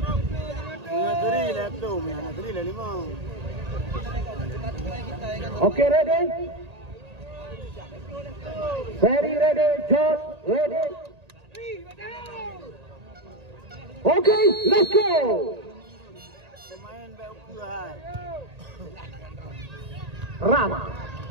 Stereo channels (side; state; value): left; late; 1.8 ms